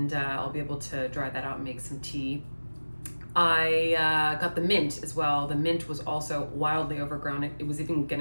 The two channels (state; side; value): inverted; both; correlation -1.00